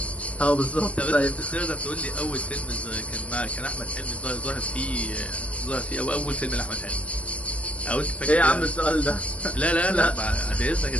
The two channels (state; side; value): late; right; 0.064 ms